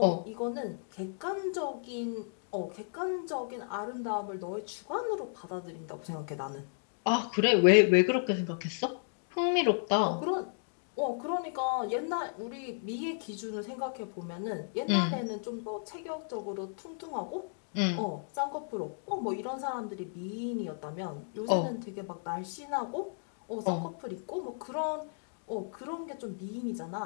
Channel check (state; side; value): silent; right; digital silence